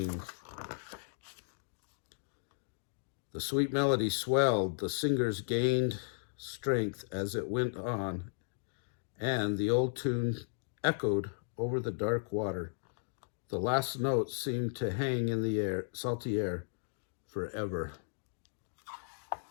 The sweet melody swelled, the singers gained strength as it went on, and the old tune echoed over the dark water. The last notes seemed to hang in the air, salty air, forever.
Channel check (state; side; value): silent; right; digital silence